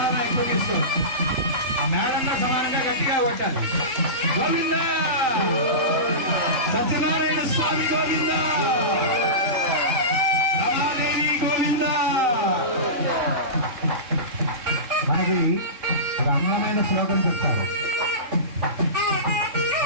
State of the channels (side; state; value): left; late; 3.4 ms